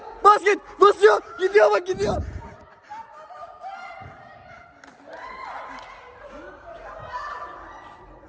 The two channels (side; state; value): both; identical; correlation 1.00